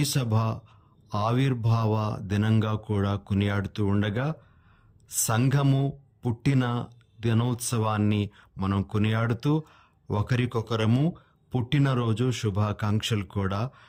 ఆవిర్భావ దినంగా కూడా కొనియాడుతూ ఉండగా, సంఘము పుట్టిన దినోత్సవాన్ని మనం కొనియాడుతూ ఒకరికొకరము పుట్టినరోజు శుభాకాంక్షలు కూడా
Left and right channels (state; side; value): identical; both; correlation 1.00